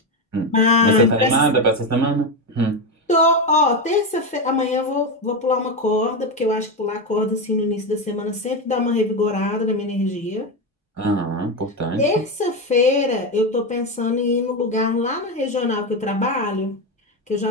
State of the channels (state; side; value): normal; both; correlation 0.13